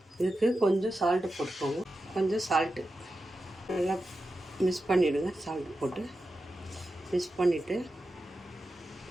இதுக்கு கொஞ்சம் சால்ட்டு போட்டுக்கோங்க. கொஞ்சம் சால்ட்டு நல்லா மிக்ஸ் பண்ணிவிடுங்க. சால்ட்டு போட்டு மிக்ஸ் பண்ணிவிட்டு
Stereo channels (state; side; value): normal; both; correlation 0.91